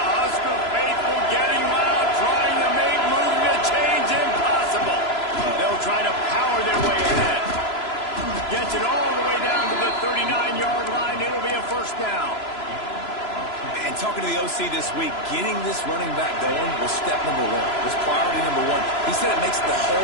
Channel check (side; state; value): right; late; 3.0 ms